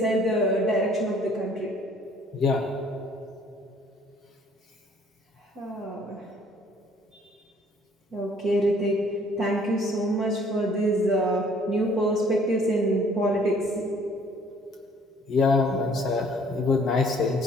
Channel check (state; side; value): normal; both; correlation 0.58